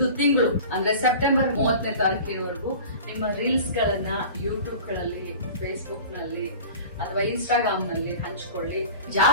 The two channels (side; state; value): both; inverted; correlation -0.39